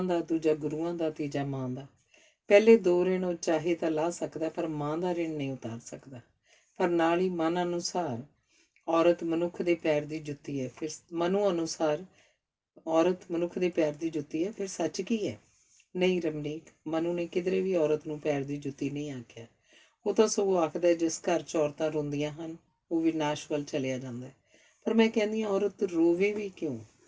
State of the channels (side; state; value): both; identical; correlation 1.00